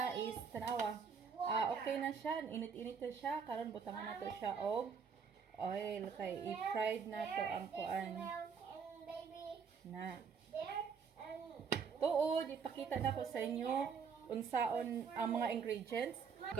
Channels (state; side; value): quieter; left; 6.1 dB